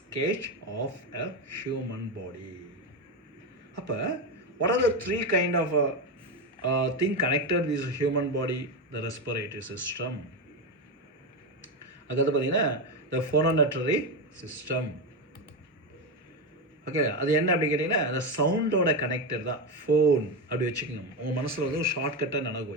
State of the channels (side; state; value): both; normal; correlation 0.13